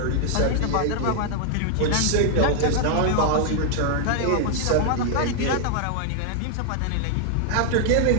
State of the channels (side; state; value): both; different; correlation 0.00